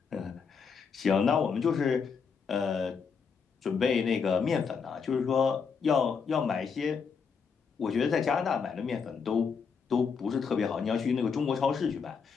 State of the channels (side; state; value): right; quieter; 5.9 dB